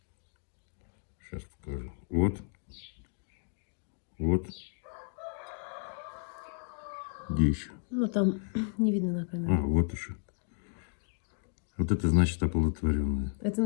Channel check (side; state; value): right; silent; 56 dB below the other